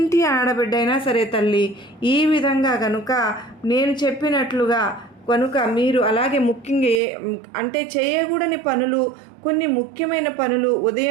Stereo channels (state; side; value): drops out; left; at 7.0 s